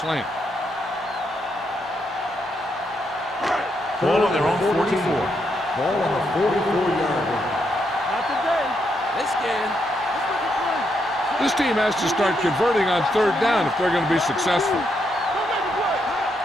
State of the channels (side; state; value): both; normal; correlation 0.79